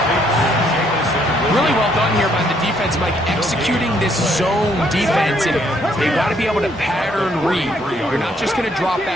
Really well done here by the defense, Mike, executing this zone defense, and they've got to be able to pattern read. You're not just going to drop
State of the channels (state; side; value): normal; both; correlation 0.69